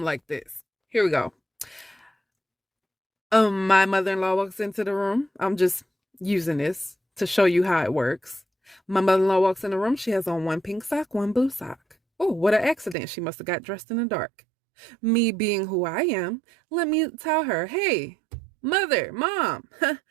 like this. Here we go. My mother-in-law walks into the room. I'm just using this to show you how it works. My mother-in-law walks in the room. She has on one pink sock, one blue sock. Oh, what an accident. She must have got dressed in the dark. Me being who I am, let me tell her, hey, mother, mom,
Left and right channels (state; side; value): drops out; left; at 13.0 s